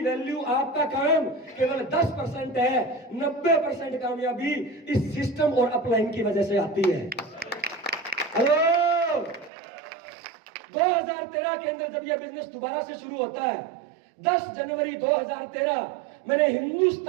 आपका काम केवल 10% है। 90% कामयाबी इस सिस्टम और अपलाइन की वजह से आती है। हेलो, 2013 के अंदर जब यह बिजनेस दोबारा से शुरू होता है, 10 जनवरी 2013, मैंने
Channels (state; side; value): drops out; left; at 9.5 s